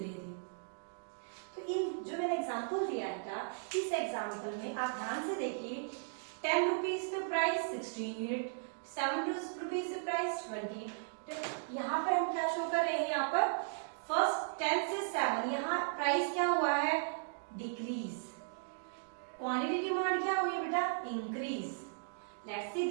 रहे थे। तो इन जो मैंने एग्जांपल दिया था, इस एग्जांपल में आप ध्यान से देखिए, 10 रुपीज पे प्राइस 16 यूनिट, 7 रुपीज पे प्राइस 20। तो यहाँ पर हम क्या शो कर रहे हैं, यहाँ पर फर्स्ट 10 से 7 यहाँ प्राइस क्या हुआ है, डिक्रीज। क्वांटिटी डिमांड क्या हुई बेटा, increase. Let's see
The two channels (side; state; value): left; silent; digital silence